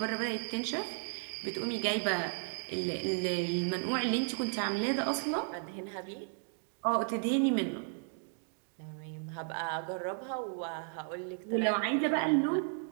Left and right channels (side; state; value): left; silent; 55 dB below the other